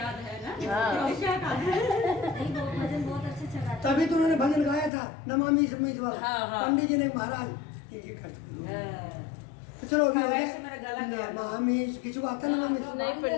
है ना हाँ। क्या गाना है? नहीं, वो भजन बहुत अच्छे से गाते तभी तो उन्होंने भजन गाया था नमामि समीस वाला। हाँ, हाँ। पंडित जी ने महाराज ये करते हाँ। तो चलो अभी हाँ, हो गया। वैसे मेरा गला गया। नमामि किसी को आता है नमामि? नहीं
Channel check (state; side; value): drops out; right; at 4.9 s